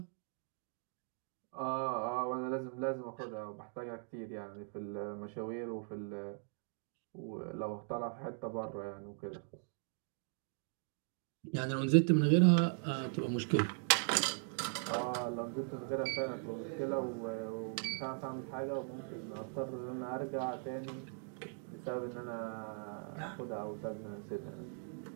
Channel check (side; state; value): left; silent; 51 dB below the other